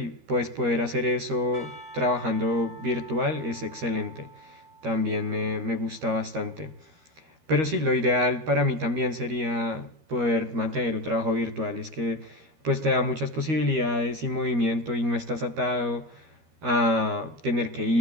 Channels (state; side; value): late; left; 13 ms